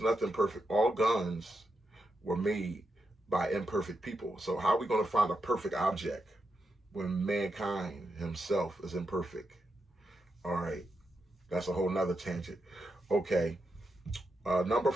perfect. All guns were made by imperfect people. So how are we going to find a perfect object when mankind himself is imperfect? All right, that's a whole nother tangent. Okay, number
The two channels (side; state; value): both; normal; correlation 0.85